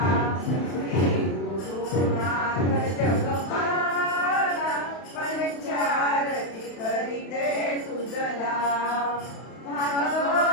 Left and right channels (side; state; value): right; late; 32 ms